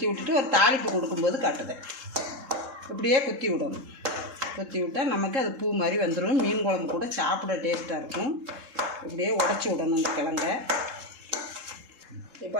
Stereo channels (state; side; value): late; left; 3.7 ms